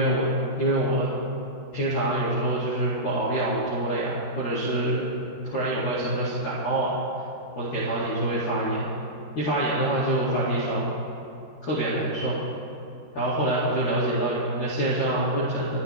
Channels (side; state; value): right; late; 13 ms